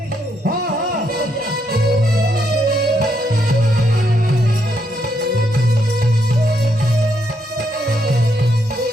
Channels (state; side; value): normal; both; correlation 0.77